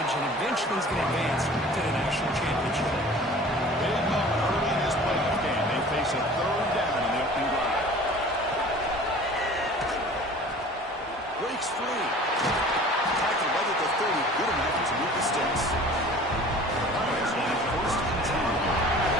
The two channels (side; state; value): both; normal; correlation 0.45